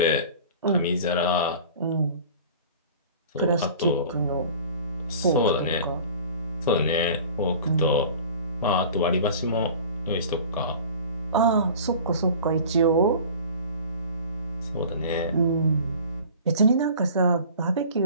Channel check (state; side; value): inverted; both; correlation -0.42